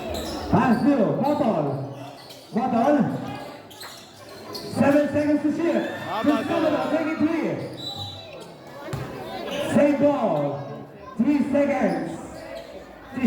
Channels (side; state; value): both; identical; correlation 1.00